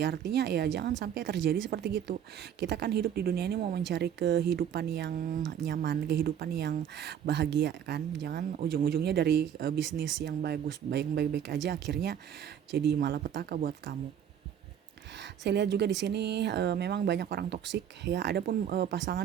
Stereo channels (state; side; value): quieter; left; 9.2 dB